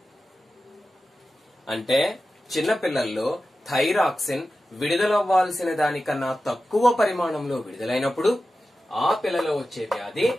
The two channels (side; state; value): both; normal; correlation 0.93